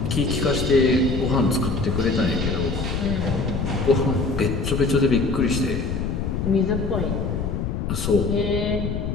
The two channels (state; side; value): noise; left; rumble, 2 dB below the sound